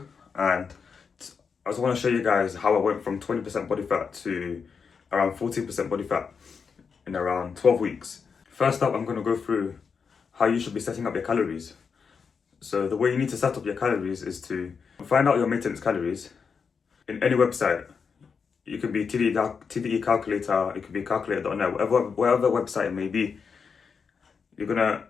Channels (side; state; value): right; quieter; 5.8 dB